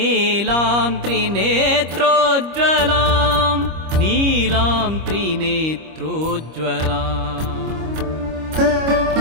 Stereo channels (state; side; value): late; left; 25 ms